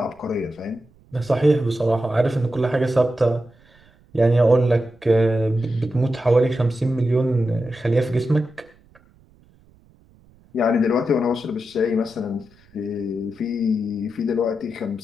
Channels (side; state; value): right; noise; rumble, 30 dB below the sound